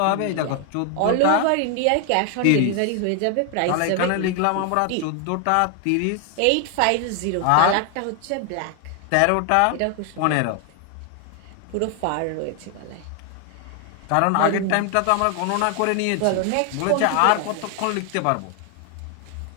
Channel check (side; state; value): both; different; correlation 0.00